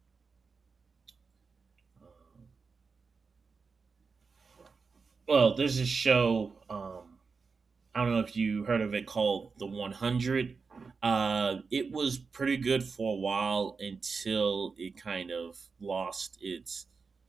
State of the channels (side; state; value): left; quieter; 4.9 dB